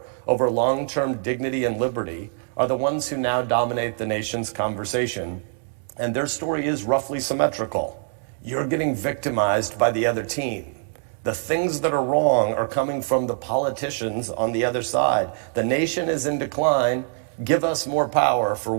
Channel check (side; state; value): left; silent; digital silence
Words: over long-term dignity and liberty are the ones who now dominate the nation's conversation. And their story is roughly symmetrical. You're getting victimized by the other team. The things that are wrong are coming from the politicians on the other side. The nation is in decline. Give us more power, for